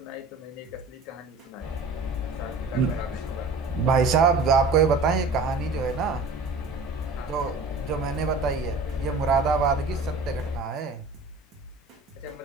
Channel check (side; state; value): left; quieter; 3.4 dB